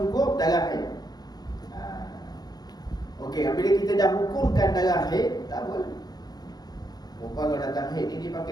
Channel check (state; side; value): late; right; 0.19 ms